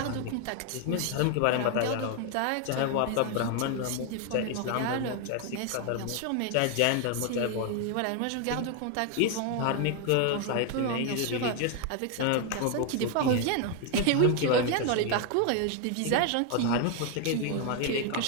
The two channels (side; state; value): both; different; correlation 0.01